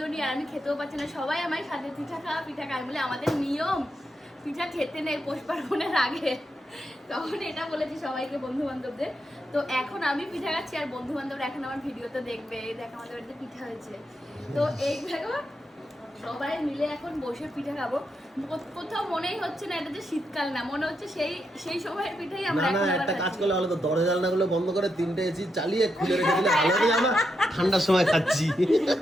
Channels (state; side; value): normal; both; correlation 0.83